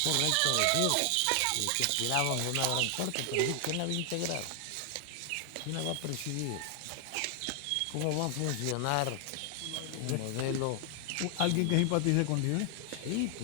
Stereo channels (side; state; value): both; different; correlation 0.00